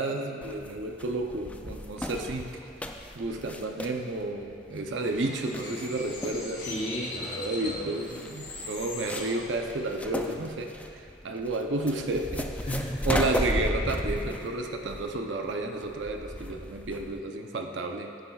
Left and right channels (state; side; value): normal; both; correlation 0.40